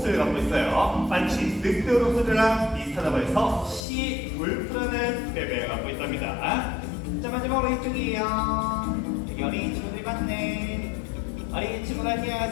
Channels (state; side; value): drops out; right; at 3.8 s